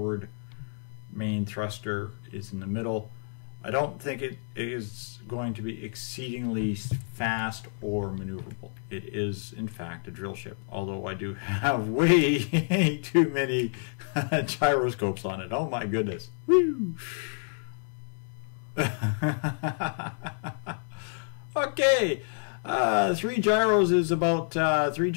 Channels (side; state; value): right; silent; 59 dB below the other